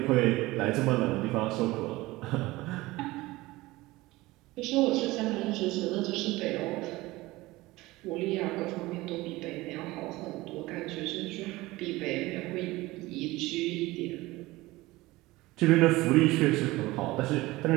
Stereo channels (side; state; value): left; quieter; 19.7 dB